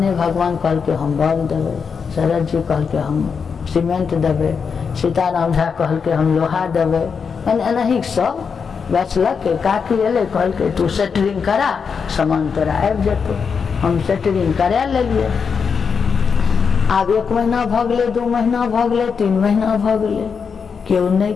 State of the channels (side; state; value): right; quieter; 6.0 dB